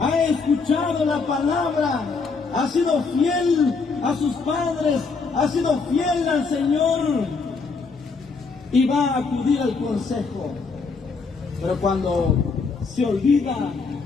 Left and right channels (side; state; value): right; quieter; 4.6 dB